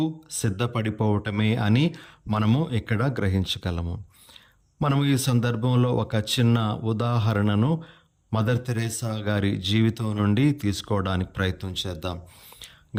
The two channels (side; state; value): both; identical; correlation 1.00